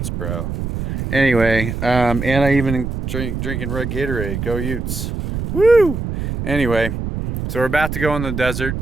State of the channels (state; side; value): noise; right; rumble, 4 dB below the sound